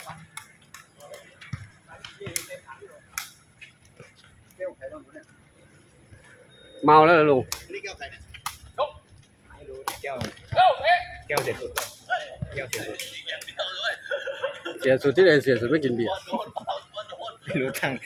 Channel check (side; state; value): both; identical; correlation 1.00